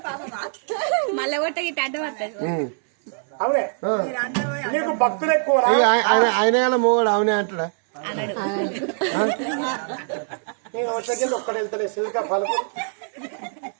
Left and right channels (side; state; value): left; silent; 63 dB below the other